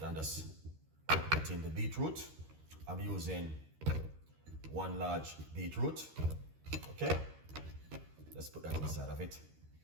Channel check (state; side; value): late; left; 13 ms